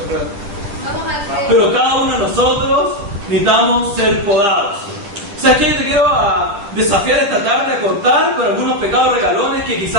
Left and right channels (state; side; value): late; left; 9.9 ms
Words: Pero cada uno de nosotros necesitamos ser podados. O sea, que yo te quiero desafiar esta tarde a cortar con algunos pecados regalones que